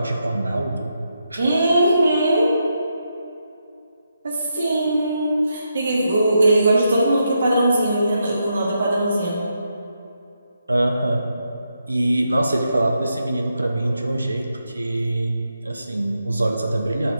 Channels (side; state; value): both; inverted; correlation -0.83